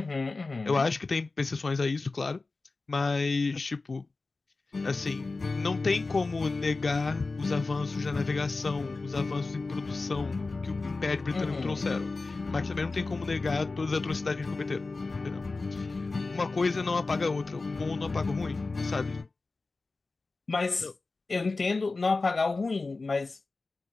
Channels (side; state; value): right; quieter; 3.6 dB